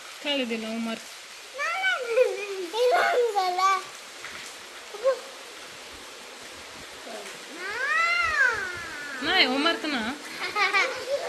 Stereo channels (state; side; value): identical; both; correlation 1.00